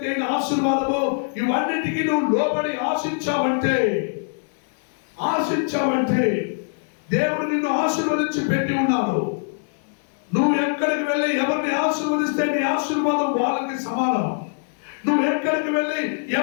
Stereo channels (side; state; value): right; silent; 64 dB below the other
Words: ఆశీర్వాదము, ఇవన్నిటికీ నువ్వు లోబడి ఆశించావంటే దేవుడు నిన్ను ఆశీర్వదించి పెట్టి ఉన్నాడు. నువ్వు ఎక్కడికి వెళ్ళి ఎవరిని ఆశీర్వదిస్తే నీ ఆశీర్వాదం వాళ్ళకి సమానం. నువ్వు ఎక్కడికి వెళ్ళి